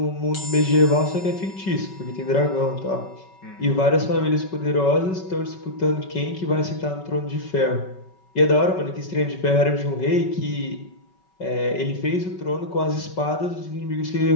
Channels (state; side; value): late; right; 5.3 ms